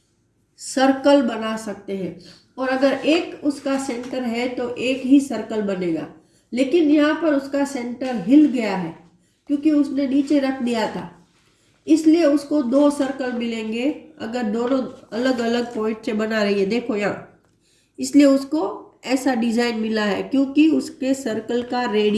सर्कल बना सकते हैं, और अगर एक उसका सेंटर है तो एक ही सर्कल बनेगा। लेकिन यहाँ पर उसका सेंटर हिल गया है क्योंकि उसने नीचे रख दिया था, इसलिए उसको 2 सर्कल मिलेंगे अगर दोनों अलग अलग पॉइंट से बना रही है। देखो यहाँ, इसलिए उसको ऐसा डिजाइन मिला है क्योंकि उसके सर्कल का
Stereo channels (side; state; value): both; identical; correlation 1.00